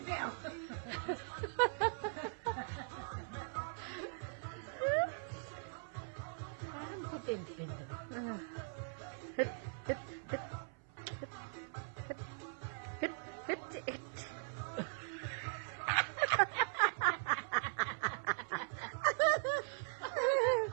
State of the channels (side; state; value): left; silent; 51 dB below the other